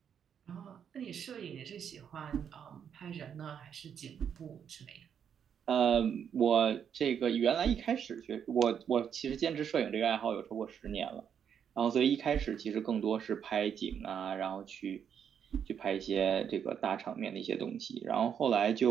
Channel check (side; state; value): left; quieter; 8.1 dB